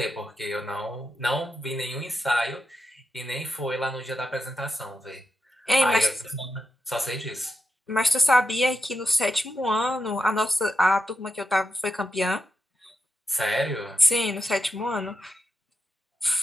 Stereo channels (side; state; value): both; normal; correlation 0.86